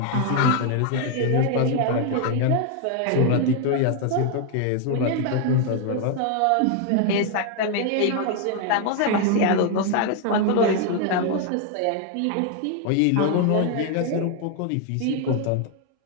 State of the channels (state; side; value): different; both; correlation 0.01